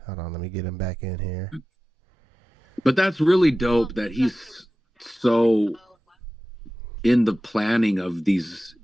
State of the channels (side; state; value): both; normal; correlation 0.94